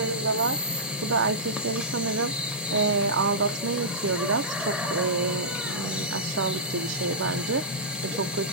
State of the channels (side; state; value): both; normal; correlation -0.14